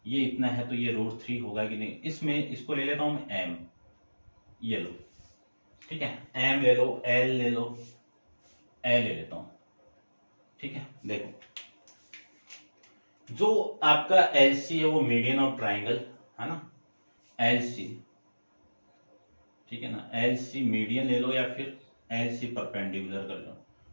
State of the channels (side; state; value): both; inverted; correlation -1.00